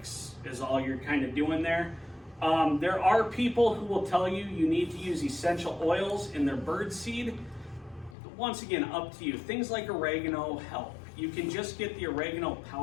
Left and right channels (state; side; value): drops out; right; at 8.2 s